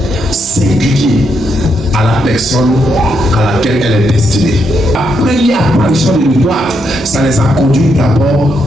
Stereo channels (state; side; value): normal; both; correlation 0.79